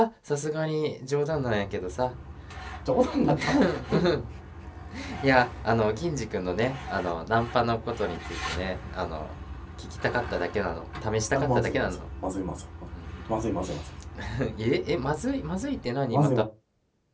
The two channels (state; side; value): identical; both; correlation 1.00